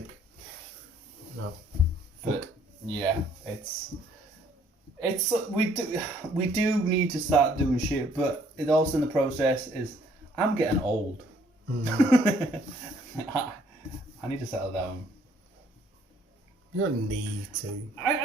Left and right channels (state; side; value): normal; both; correlation 0.63